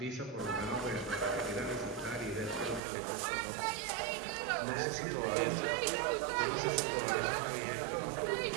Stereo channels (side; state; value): left; drops out; at 2.8 s